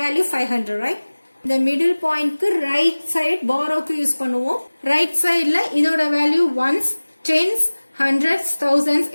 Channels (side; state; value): both; inverted; correlation -1.00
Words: value 500, right? இந்த middle pointக்கு right side borrowக்கு யூஸ் பண்ணுவோம். Right sideல இதோட value ones, tens, hundreds, thousands,